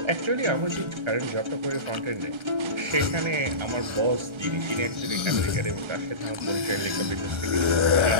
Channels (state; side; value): late; left; 1.3 ms